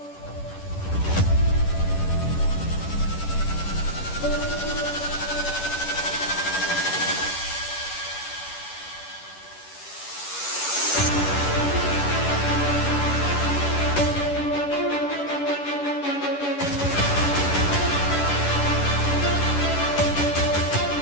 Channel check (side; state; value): right; late; 11 ms